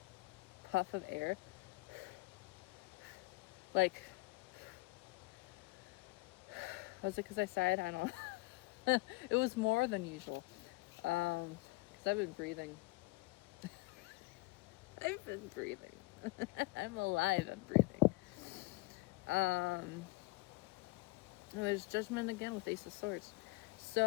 puff of air? Like, was it because I sighed? I don't know. It was more than usual, because I've been breathing. I've been breathing. I'm alive and breathing. There's Judgment again with Ace of Swords.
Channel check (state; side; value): quieter; right; 23.5 dB